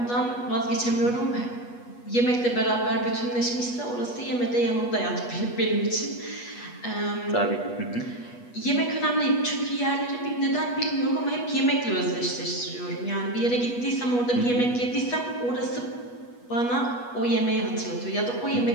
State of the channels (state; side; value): late; right; 8.2 ms